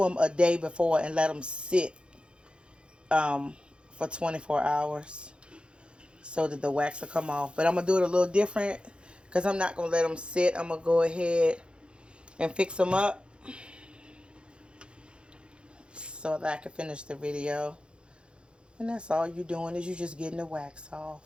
them a day before and let them sit for 24 hours so that the wax will come off. But I'm going to do it a little different because I'm not going to let them sit. I'm going to go ahead and fix them up so that I can finish the video. And that's all you're doing is you're just getting the wax off.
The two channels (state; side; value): late; left; 0.055 ms